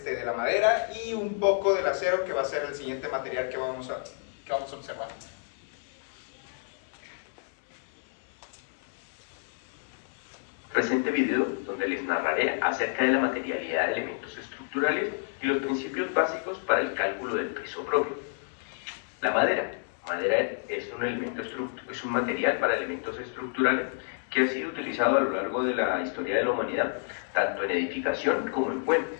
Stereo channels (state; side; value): silent; right; digital silence